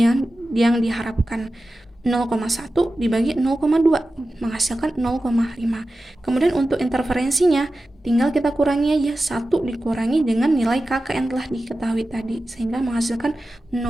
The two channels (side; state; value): both; normal; correlation 0.94